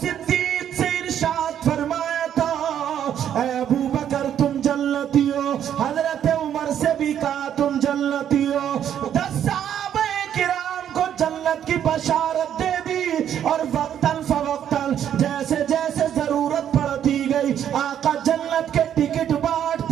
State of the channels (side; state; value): left; quieter; 9.8 dB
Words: صدیق سے ارشاد فرمایا تھا، اے ابو بکر تم جنتی ہو۔ حضرت عمر سے بھی کہا تم جنتی ہو۔ 10 صحابہ کرام کو جنت کی بشارت دے دی، اور وقتاً فوقتاً جیسے جیسے ضرورت پڑتی گئی آقا جنت کے ٹکٹ